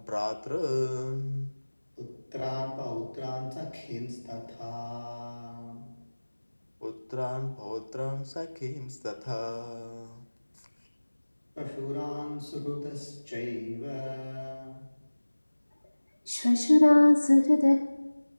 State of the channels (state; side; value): inverted; both; correlation -1.00